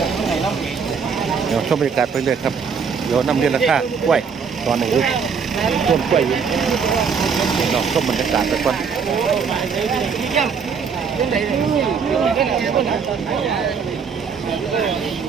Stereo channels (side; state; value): left; quieter; 6.1 dB